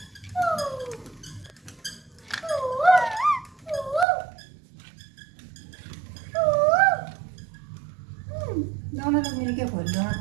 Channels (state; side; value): drops out; left; at 4.0 s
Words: दोनों लोग मिलके खोल लो। हाँ